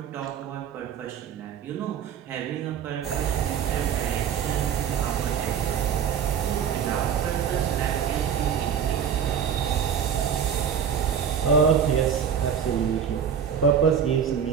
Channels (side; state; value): left; quieter; 7.8 dB